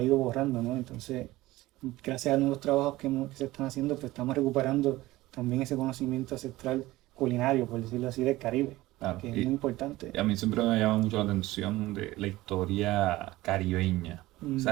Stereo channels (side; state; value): left; quieter; 17.9 dB